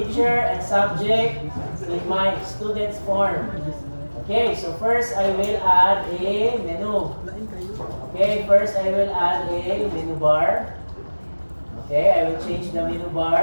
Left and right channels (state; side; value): inverted; both; correlation -1.00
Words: and subject in my students form. Okay, so first I will add a menu. Okay, first I will add a menu bar. Okay, I will change the menu